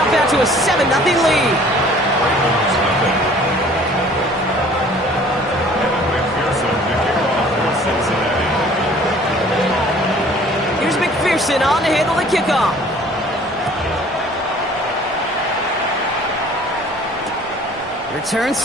out to a 7-0 lead. Here's McPherson on to handle the kickoff. Return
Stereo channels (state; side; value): normal; both; correlation 0.52